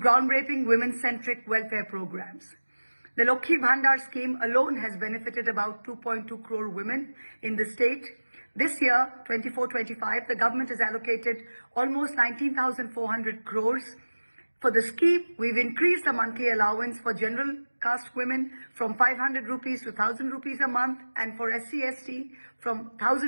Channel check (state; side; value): inverted; both; correlation -1.00